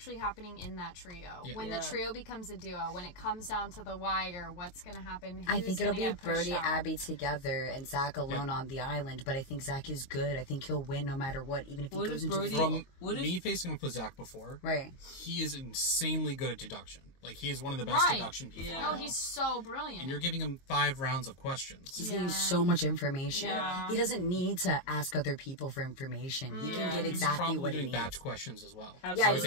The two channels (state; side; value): late; right; 22 ms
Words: happening in that trio. Yeah. When Yeah. the trio becomes a duo, when it comes down to the wire, what's going to happen? I Who's think it'll gonna be get pushed Brody, out? Abby together, and Zach alone on the island. But I think Zach is good. I think he'll win no matter what, even if he What goes if into Brody- the From What if- me facing up with Zach before, right. he is insanely good at deduction. Like, he is one of the best Right. deduction people. Yeah. I No, know. he's so brilliant. And you're giving him 5 rounds of questions. He's getting so much information. Yeah. He doesn't need to ask other people for information. He can get He's exactly probably what he doing needs. batch questions as well. Absolutely. I would he's